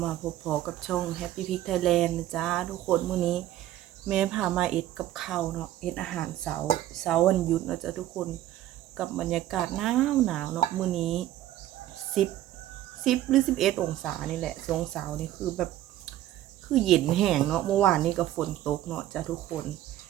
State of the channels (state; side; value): quieter; left; 13.4 dB